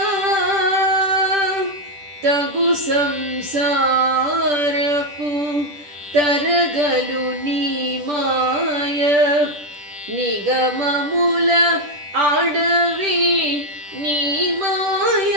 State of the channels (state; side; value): late; left; 10 ms